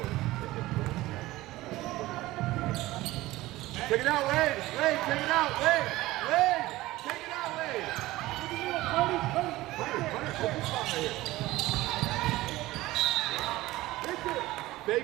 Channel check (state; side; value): quieter; left; 17.9 dB